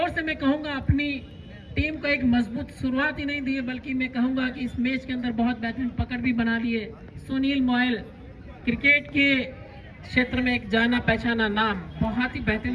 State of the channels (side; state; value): both; identical; correlation 1.00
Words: से मैं कहूंगा अपनी टीम को एक मजबूत शुरुआत ही नहीं दी है, बल्कि मैं कहूंगा कि इस मैच के अंदर बहुत बेहतरीन पकड़ भी बना ली है। सुनील मोयल क्रिकेट के क्षेत्र में एक जाना पहचाना नाम, बहुत ही